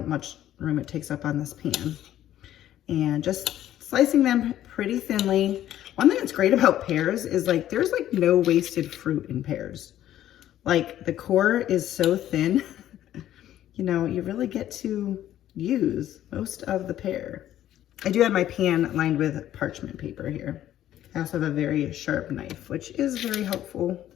room it takes up on this pan. And just slicing them pretty thinly. One thing that's great about pears is like, there's like no wasted fruit in pears. Like the core is so thin, you really get to use most of the pear. I do have my pan lined with parchment paper here. I also have a very sharp knife, which is very helpful.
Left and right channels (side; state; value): right; quieter; 12.3 dB